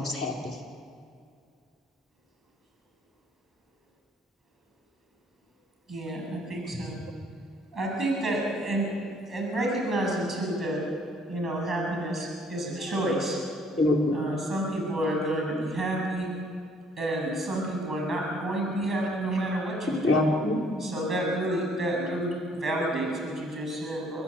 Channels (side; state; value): both; normal; correlation 0.61